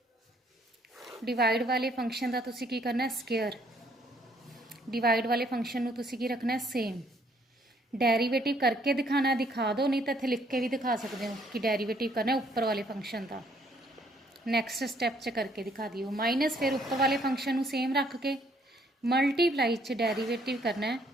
डिवाइड वाले फंक्शन का तुसी की करना है स्केयर, डिवाइड वाले फंक्शन नू तुसी की रखना है सेम, डेरीवेटिव करके दिखाना है दिखा दो, नहीं तो इत्थे लिख के भी दिखा सकते हो कि डेरीवेटिव करना है उपर वाले फंक्शन का। नैक्सट स्टैप च करके दिखा दियो, माइनस फिर उपर वाले फंक्शन नू सेम रख के मल्टीप्लाई च डेरीवेटिव करना है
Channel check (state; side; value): normal; both; correlation 0.66